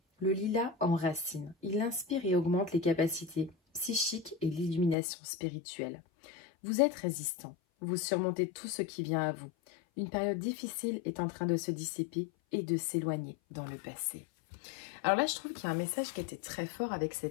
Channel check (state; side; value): drops out; right; at 5.0 s